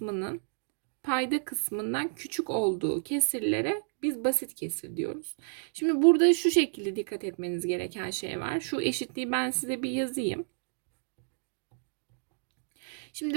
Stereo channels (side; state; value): left; silent; digital silence